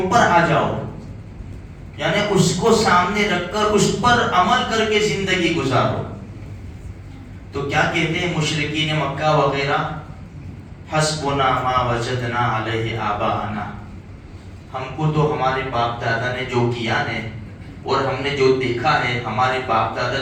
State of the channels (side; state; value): both; identical; correlation 1.00